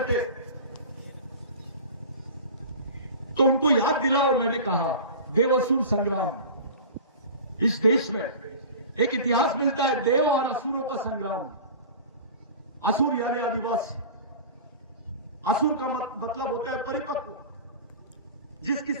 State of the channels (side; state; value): both; inverted; correlation -0.36